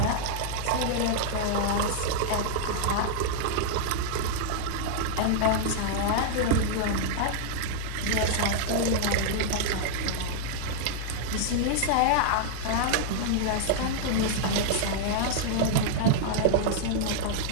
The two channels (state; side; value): different; both; correlation -0.01